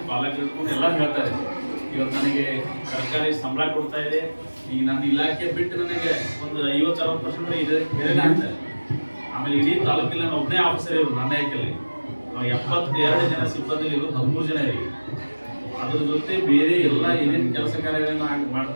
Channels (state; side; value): inverted; both; correlation -1.00